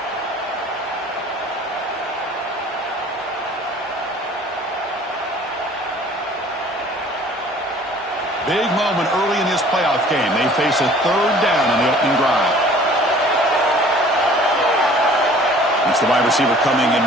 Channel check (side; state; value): both; normal; correlation 0.51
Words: Big moment early in this playoff game. They face a 3rd down on the opening drive. It's the wide receiver coming in